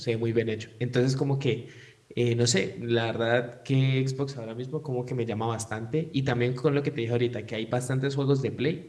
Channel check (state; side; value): identical; both; correlation 1.00